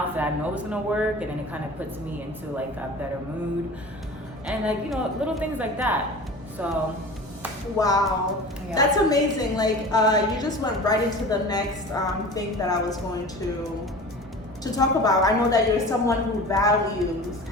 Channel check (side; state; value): both; normal; correlation 0.37